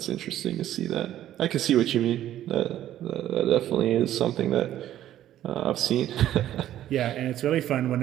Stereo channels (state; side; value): quieter; left; 12.4 dB